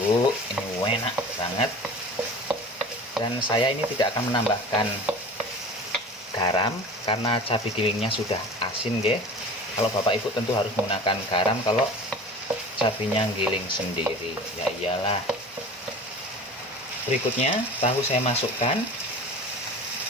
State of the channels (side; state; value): both; normal; correlation 0.38